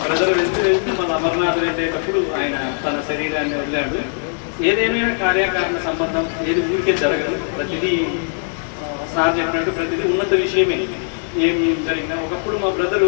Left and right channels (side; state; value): right; silent; 66 dB below the other